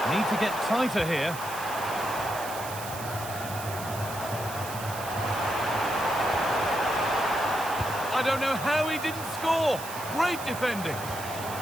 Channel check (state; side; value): noise; right; hiss, 11 dB below the sound